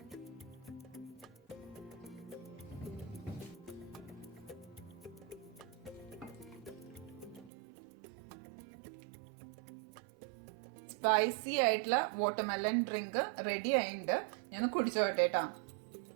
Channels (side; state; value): left; drops out; at 7.5 s